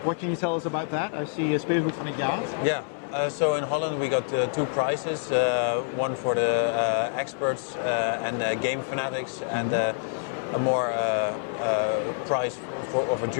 what can you tell us about that? I see Speelgoed van het jaar. Yeah. So in Holland we got 2 prizes, one for the experts and game fanatics, and a more prize of a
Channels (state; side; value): silent; right; digital silence